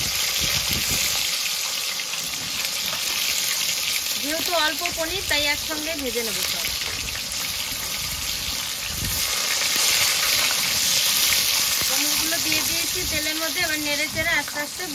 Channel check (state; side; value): identical; both; correlation 1.00